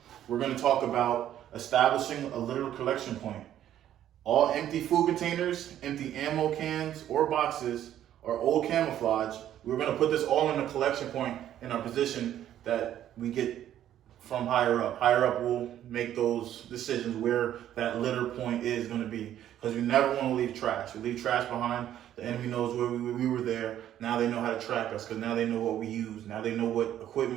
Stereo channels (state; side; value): quieter; left; 11.4 dB